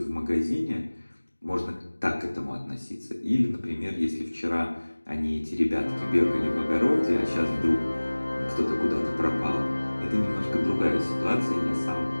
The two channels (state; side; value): inverted; both; correlation -1.00